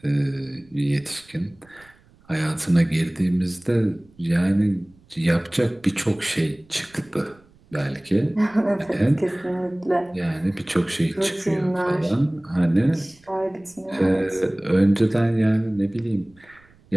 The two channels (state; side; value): noise; right; rumble, 30 dB below the sound